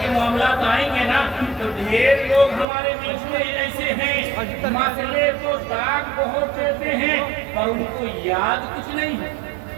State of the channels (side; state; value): left; drops out; at 2.7 s